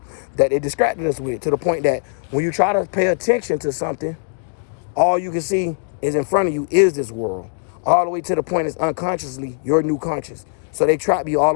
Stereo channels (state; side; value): silent; right; digital silence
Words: that they distracted us with, to the point that when you try to pay attention to something, all you can see is in front of you is this world. All the way to the point is unconsciously your new conscious. So they trap you all